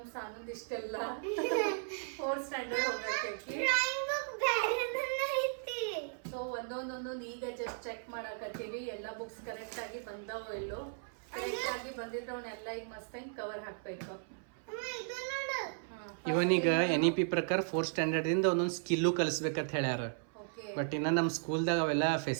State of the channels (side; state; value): left; silent; 54 dB below the other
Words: ಸಾನಂದ್ ಇಷ್ಟೆಲ್ಲ 4th ಸ್ಟ್ಯಾಂಡರ್ಡ್ ಹೋಗಕ್ಕೆ. ಸೊ ಒಂದೊಂದೊಂದು ಈಗ ಜಸ್ಟ್ ಚೆಕ್ ಮಾಡಾಕತ್ತೀವಿ ಎಲ್ಲ ಬುಕ್ಸ್ ಕರೆಕ್ಟ್ ಆಗಿ ಬಂದವೋ ಇಲ್ಲೋ. ಕರೆಕ್ಟ್ ಆಗಿ ಬಂದಿದ್ರೆ ಅವನ್ನೆಲ್ಲ ಈಗ ಮಸ್ತಾಗಿ ಕವರ್ ಹಾಕ್ಬೇಕು. ಇವನೀಗ NEP ಪ್ರಕಾರ 4th ಸ್ಟ್ಯಾಂಡರ್ಡ್ ಇಂದ ಒಂದೊಂದು ಸ್ಕಿಲ್ಲು ಕಲಿಸ್ಬೇಕಂತ ಹೇಳ್ಯಾರ. ಬಟ್ ಇನ್ನ ನಮ್ ಸ್ಕೂಲ್ದಾಗ ಅವೆಲ್ಲ